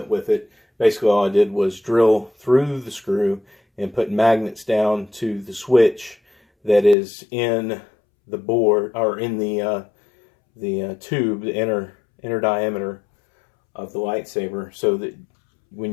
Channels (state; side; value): drops out; right; at 7.0 s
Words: with it. Basically all I did was drill through the screw and put magnets down to the switch that is in the board, or in the tube, the inner diameter of the lightsaber, so that